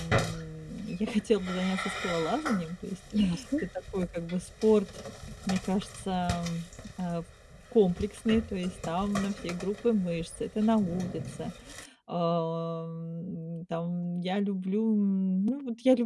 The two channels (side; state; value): both; identical; correlation 1.00